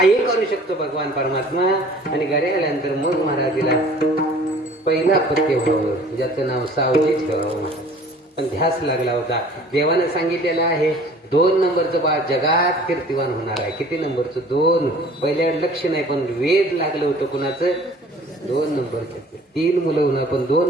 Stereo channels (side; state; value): both; normal; correlation 0.50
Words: करू शकतो भगवान परमात्मा. आणि घरी आल्यानंतर मग महाराज तिला पहिला पत्य व्हावं ज्याचं नाव सावजी ठेवावं. पण ध्यास लागला होता. देवानं सांगितलेलं आहे 2 नंबरचं बाळ जगात कीर्तिवान होणार आहे. किती नंबरचं? 2. पहिल्या लक्ष नाही, पण वेद लागलं होतं कुणाचं? 2 नंबरचं. 3 मुलं होणार, पण